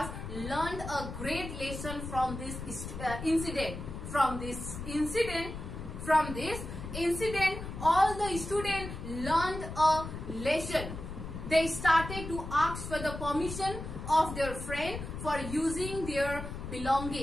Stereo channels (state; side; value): noise; left; rumble, 8 dB below the sound